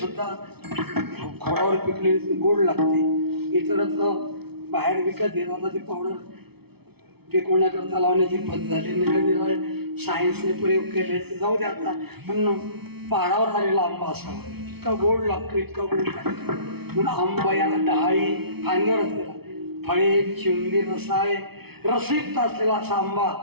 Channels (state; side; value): late; left; 0.97 ms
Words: खोडावर पिकलेली गोड लागते. इतरच बाहेर विकत घेत आता ती पावडर पिकवण्याकरता लावण्याची पद्धत झाली. निरनिराळे सायन्सने प्रयोग केले ते जाऊ दे आता. पण पहाडावर आलेला आंबा असावा, इतका गोड लागतो, इतका गोड लागतो. म्हणून आंबा याला डहाळी फांदीवर असलेला, फळे चिंबी रसाळे रसिक्त असलेला असा आंबा